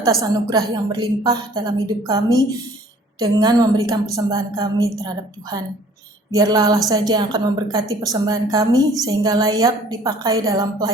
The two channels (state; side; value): normal; both; correlation 0.53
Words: anugerah yang berlimpah dalam hidup kami dengan memberikan persembahan kami terhadap Tuhan. Biarlah Allah saja yang akan memberkati persembahan kami sehingga layak dipakai dalam